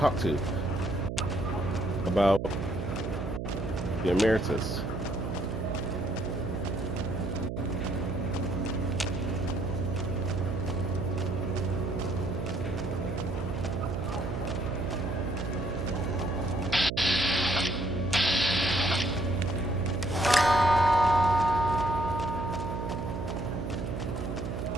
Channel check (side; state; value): right; noise; hum, 4 dB below the sound